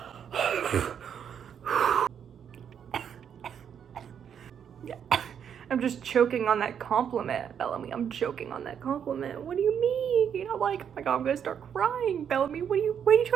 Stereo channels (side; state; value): left; quieter; 8.2 dB